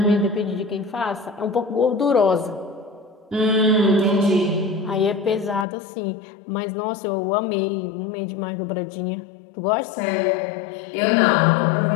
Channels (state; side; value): drops out; right; at 5.7 s